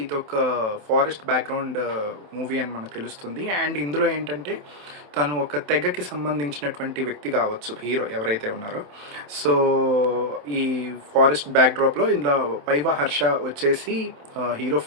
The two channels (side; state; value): left; late; 27 ms